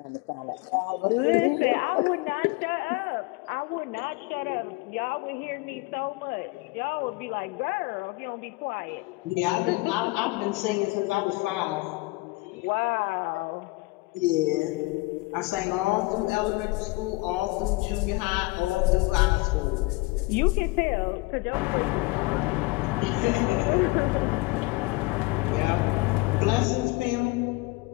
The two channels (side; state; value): right; quieter; 23.4 dB